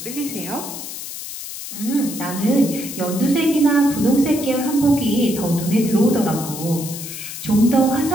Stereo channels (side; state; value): left; noise; hiss, 9 dB below the sound